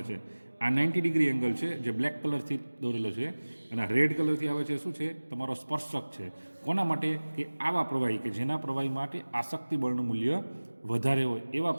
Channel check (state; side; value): inverted; both; correlation -1.00